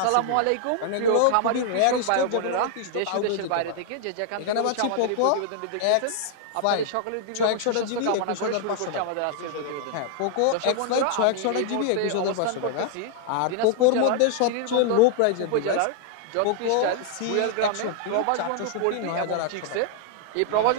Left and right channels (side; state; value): both; different; correlation 0.00